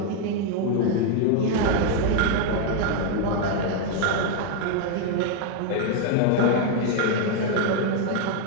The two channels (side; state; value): both; different; correlation 0.00